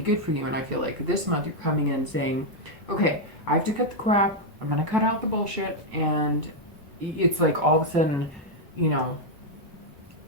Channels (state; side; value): normal; both; correlation 0.00